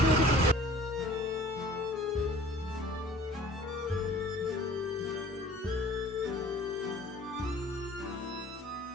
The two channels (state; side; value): normal; both; correlation 0.49